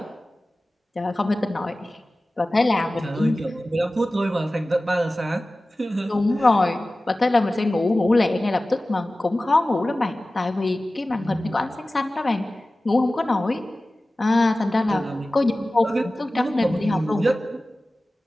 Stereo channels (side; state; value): both; normal; correlation 0.97